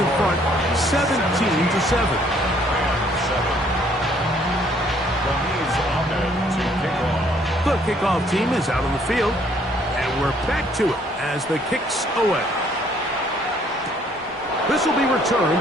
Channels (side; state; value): both; normal; correlation 0.63